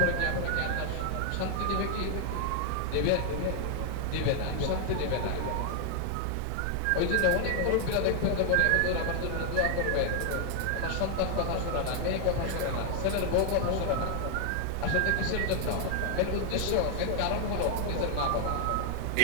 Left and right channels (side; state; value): both; different; correlation 0.00